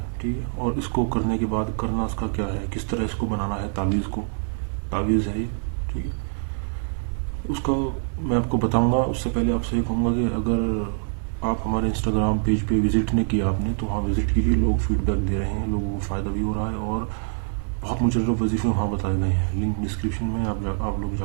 ठीक है। और इसको करने के बाद करना इसका क्या है, किस तरह इसको बनाना है तावीज़ को। तावीज़ है ये। ठीक है। उसका मैं आपको बताऊंगा। उससे पहले आपसे ये कहूँगा कि अगर आप हमारे इंस्टाग्राम पेज पे विज़िट नहीं किया आपने तो वहाँ विज़िट कीजिए। लोग फीडबैक दे रहे हैं, लोगों को फ़ायदा भी हो रहा है और बहुत मुजर्रब वजीफ़े वहाँ बताए गए हैं। लिंक डिस्क्रिप्शन में आप लोग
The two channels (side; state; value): left; silent; digital silence